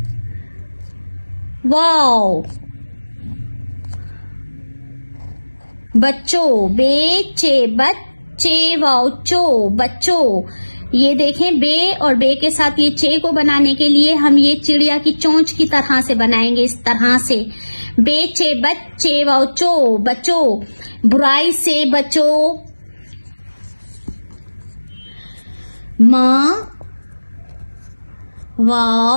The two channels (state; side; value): inverted; both; correlation -1.00